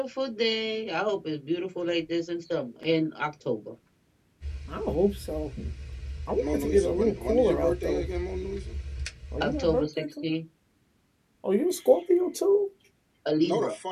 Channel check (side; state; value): both; identical; correlation 1.00